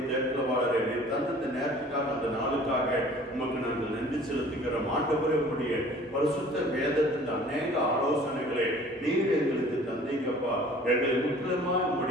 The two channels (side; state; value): both; normal; correlation 0.49